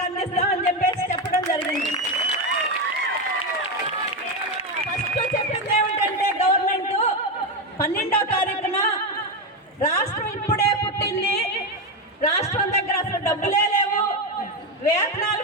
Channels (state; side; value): normal; both; correlation 0.11